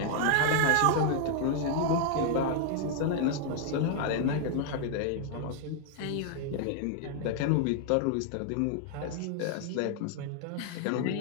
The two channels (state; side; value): different; both; correlation 0.00